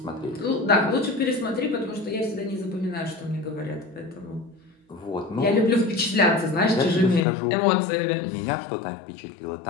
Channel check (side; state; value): right; drops out; at 7.2 s